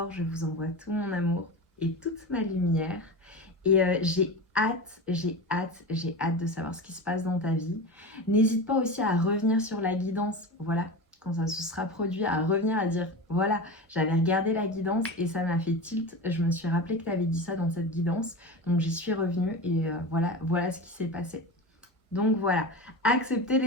je vous envoie tout mon amour et toute ma lumière. Et j'ai hâte de savoir ce qui se passe dans ta vie. N'hésite pas aussi à revenir sur la guidance, voilà, quand ça se sera produit, à revenir à dire, voilà, j'avais regardé la guidance et ça m'a fait tilt. Je me suis rappelé que tu avais dit ça dans cette guidance, donc j'y suis revenue et voilà ce qui s'est passé. Donc voilà, acceptez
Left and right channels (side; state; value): both; normal; correlation 0.27